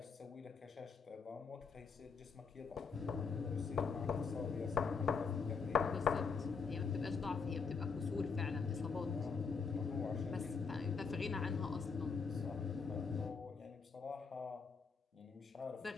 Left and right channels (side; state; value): right; quieter; 5.3 dB